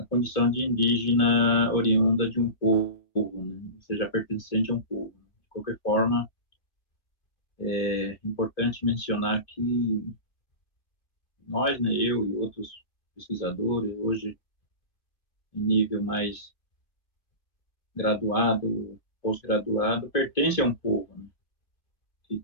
condição de indígena oriunda de um povo, né? Ou seja, pertencente a um povo. De qualquer forma, é importante mencionar que nós, né, eu e outros pesquisadores, hoje em nível mais graduado, pós-graduado, pertence a um povo, né,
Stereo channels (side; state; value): right; late; 2.7 ms